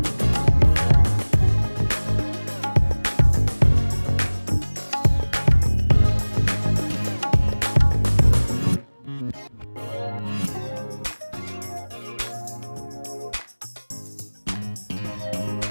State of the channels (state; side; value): inverted; both; correlation -1.00